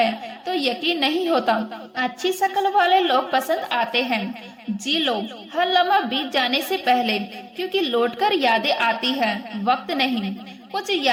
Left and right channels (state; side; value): identical; both; correlation 1.00